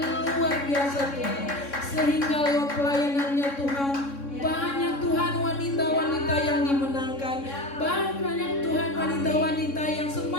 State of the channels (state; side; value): late; right; 3.6 ms